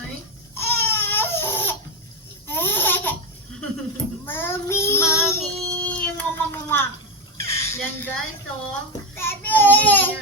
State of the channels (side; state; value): both; normal; correlation 0.10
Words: Mommy. Mami, mama. Yan guys, oh. Baby. Yung buhok